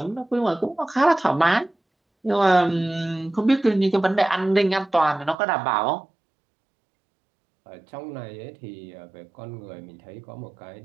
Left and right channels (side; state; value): left; drops out; at 5.4 s